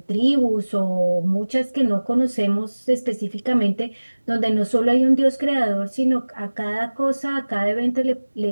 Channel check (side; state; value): both; inverted; correlation -1.00